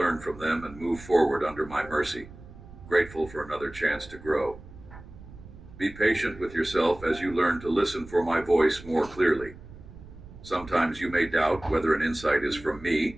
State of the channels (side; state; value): right; noise; rumble, 17 dB below the sound